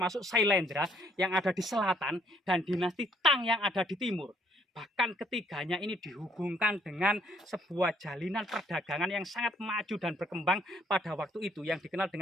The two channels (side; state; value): both; normal; correlation 0.66